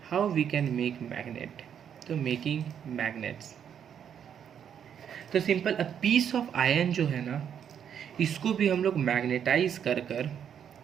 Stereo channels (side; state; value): left; quieter; 8.5 dB